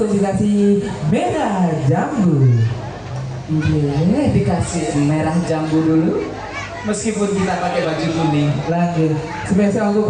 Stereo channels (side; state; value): both; identical; correlation 1.00